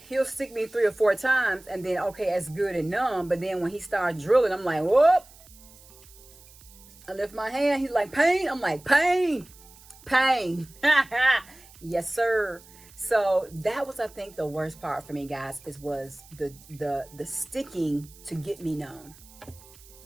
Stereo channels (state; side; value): noise; right; hiss, 23 dB below the sound